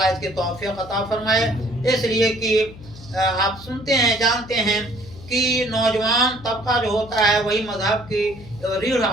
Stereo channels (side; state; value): left; noise; hum, 18 dB below the sound